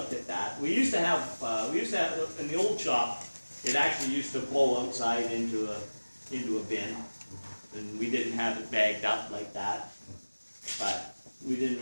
at that. We used to have in the old shop, it actually used to blow outside into a bin, and we didn't have it bagged up like that. But we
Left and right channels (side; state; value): both; inverted; correlation -1.00